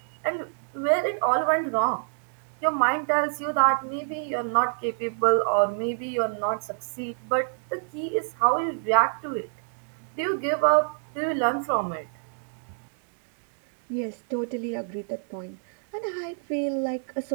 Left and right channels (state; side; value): silent; left; digital silence